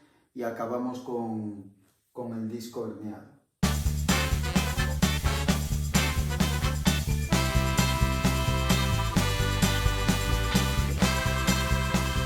y acabamos con el disco herniado.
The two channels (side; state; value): both; identical; correlation 1.00